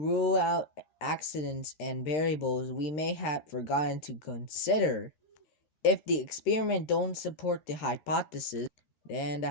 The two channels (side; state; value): right; late; 13 ms